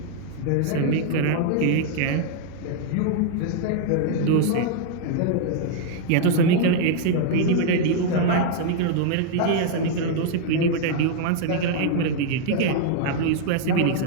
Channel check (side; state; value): both; different; correlation 0.00